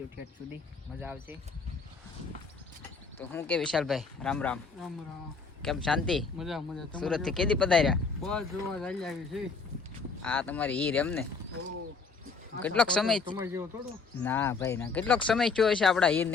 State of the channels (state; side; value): quieter; right; 4.7 dB